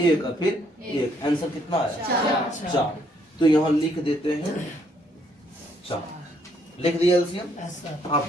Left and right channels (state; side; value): normal; both; correlation 0.69